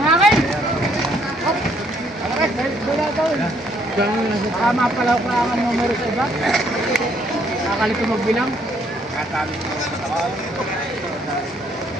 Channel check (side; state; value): both; normal; correlation 0.67